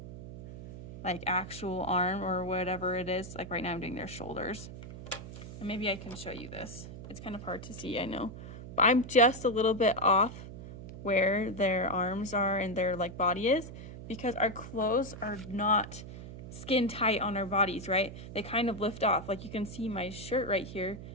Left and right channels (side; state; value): right; noise; hum, 12 dB below the sound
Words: like actual arm or whatever it is. Like right now I'm doing their shoulders. And maybe I can show you this. It's kind of hard to see, I know. But I'm just a little bit off where their arms are and their like body is, because our clothes are not skin tight on our bodies, right? They kind of lift off. Like you can see my shirt right here,